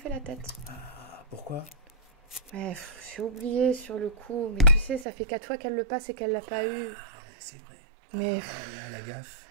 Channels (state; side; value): drops out; left; at 5.1 s